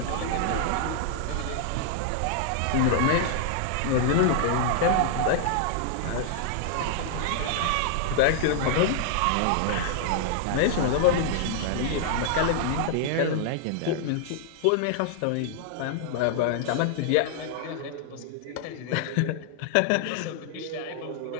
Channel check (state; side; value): different; both; correlation -0.01